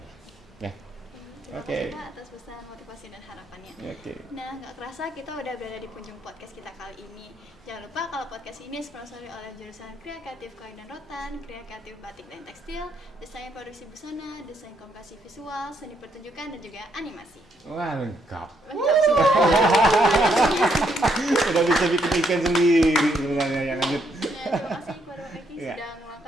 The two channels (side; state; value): both; normal; correlation 0.74